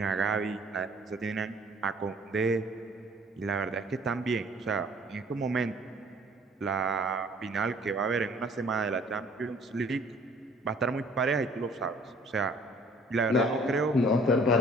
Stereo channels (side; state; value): both; normal; correlation 0.55